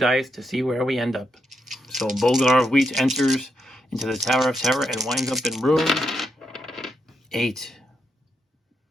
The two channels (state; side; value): normal; both; correlation 0.82